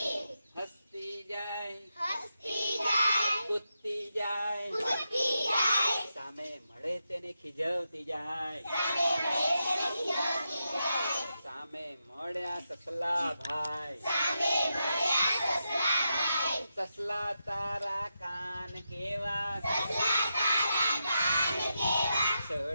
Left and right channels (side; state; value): both; inverted; correlation -0.86